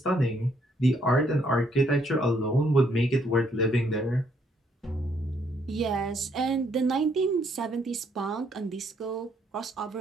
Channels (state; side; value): normal; both; correlation 0.70